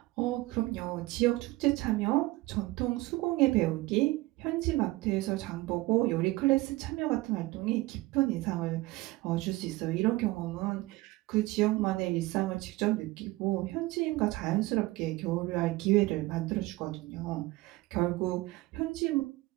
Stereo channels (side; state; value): left; quieter; 19.8 dB